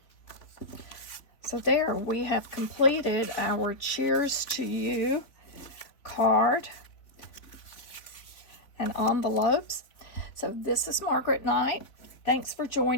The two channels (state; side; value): late; right; 3.5 ms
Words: So there, we have completed our Cheers to You card and envelopes. So this is Margaret Knight. Thanks for